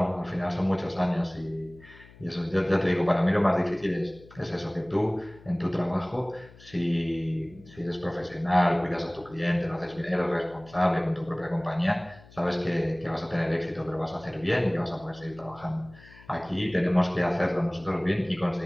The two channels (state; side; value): noise; left; hum, 22 dB below the sound